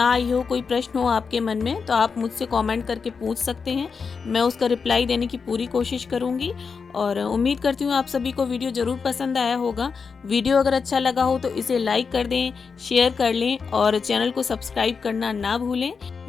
आई हो, कोई प्रश्न हो आपके मन में, तो आप मुझसे कमेंट करके पूछ सकते हैं, मैं उसका रिप्लाई देने की पूरी कोशिश करूँगी। और उम्मीद करती हूँ आप सभी को वीडियो ज़रूर पसंद आया होगा। वीडियो अगर अच्छा लगा हो तो इसे लाइक कर दें, शेयर कर लें और चैनल को सब्सक्राइब करना ना भूलें।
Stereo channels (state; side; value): quieter; right; 5.4 dB